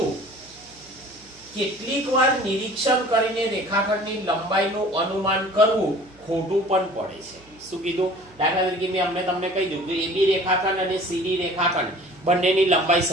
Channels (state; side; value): noise; right; hum, 27 dB below the sound